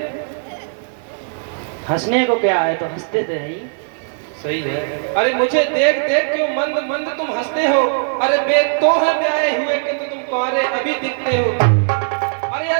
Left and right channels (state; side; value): silent; left; digital silence